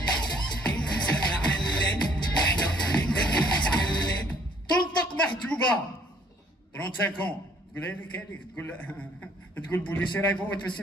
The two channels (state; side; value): normal; both; correlation 0.62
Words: تنطق محجوبة 35 تقول هذيك تقول بوليسي راه يفوت في